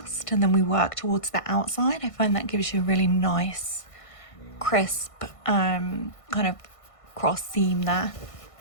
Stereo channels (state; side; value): late; right; 1.5 ms